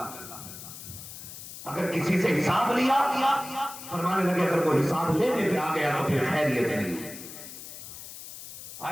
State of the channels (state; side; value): noise; left; hiss, 13 dB below the sound